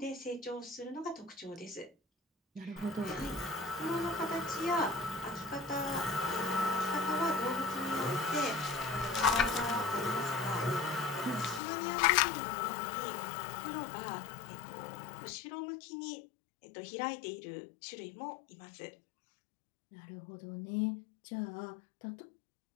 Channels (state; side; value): drops out; right; at 11.6 s